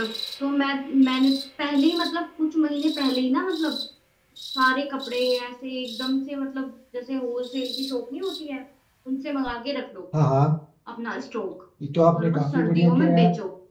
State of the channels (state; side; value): identical; both; correlation 1.00